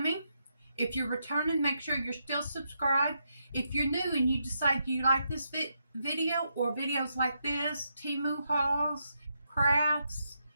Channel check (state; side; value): inverted; both; correlation -0.81